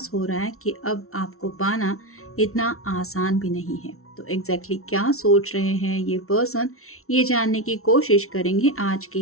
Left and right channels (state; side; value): late; right; 0.63 ms